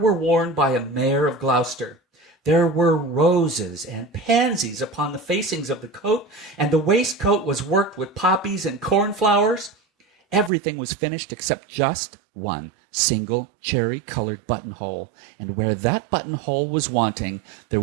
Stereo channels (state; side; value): drops out; left; at 10.5 s